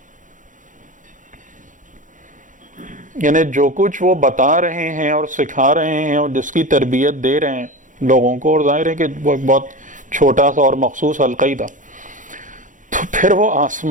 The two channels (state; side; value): late; left; 0.37 ms